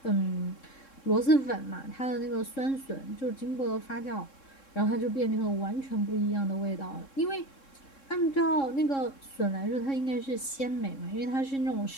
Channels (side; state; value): right; late; 3.7 ms